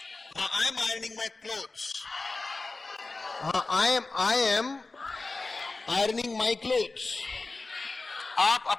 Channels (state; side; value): quieter; right; 3.5 dB